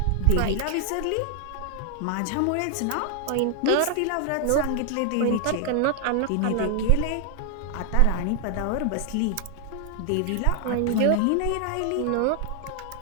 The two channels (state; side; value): different; both; correlation 0.00